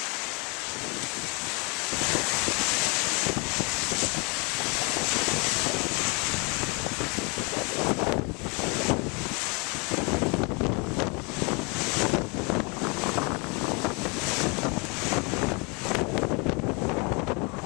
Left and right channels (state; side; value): quieter; right; 31.4 dB